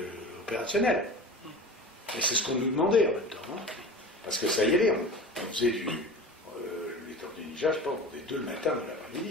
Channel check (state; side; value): normal; both; correlation 0.35